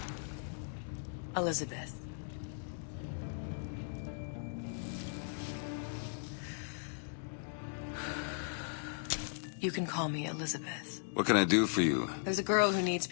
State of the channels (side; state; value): right; silent; digital silence